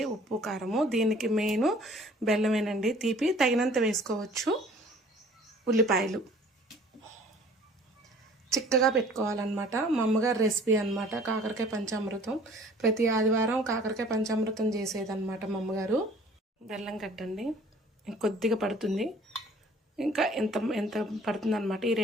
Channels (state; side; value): normal; both; correlation 0.52